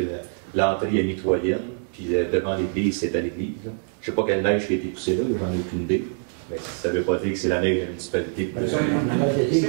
l'entrée est mitoyenne, puis devant l'église, c'est à l'église. Je ne sais pas quelle neige qui a été poussée là, j'en ai aucune idée. Mais ça ne veut pas dire que c'est la neige de la municipalité.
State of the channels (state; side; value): silent; left; 62 dB below the other